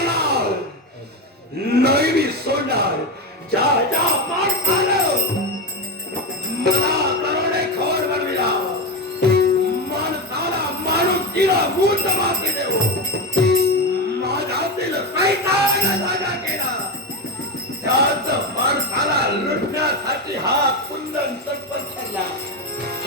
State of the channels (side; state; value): both; normal; correlation 0.15